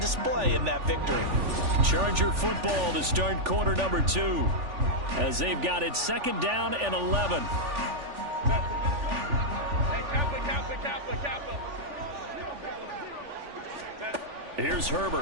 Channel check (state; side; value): late; left; 3.4 ms